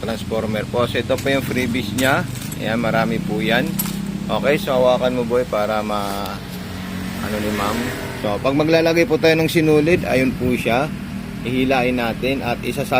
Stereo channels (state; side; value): identical; both; correlation 1.00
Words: po. So, ito po yung freebies niya. Ayan, marami po yan. Okay? So, hawakan mo boy para ano ni ma'am. So, pag maglalagay po tayo ng sinulid, ayun po siya. Ihilain natin at